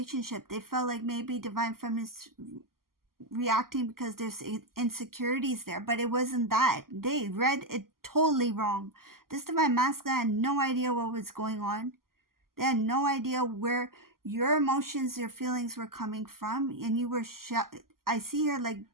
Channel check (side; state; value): left; late; 0.92 ms